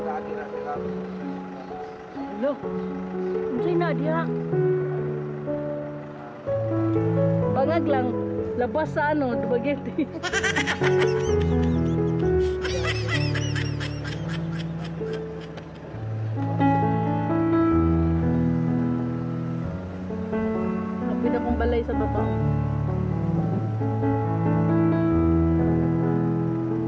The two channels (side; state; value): both; identical; correlation 1.00